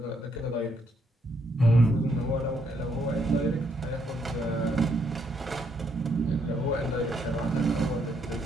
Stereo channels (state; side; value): normal; both; correlation 0.74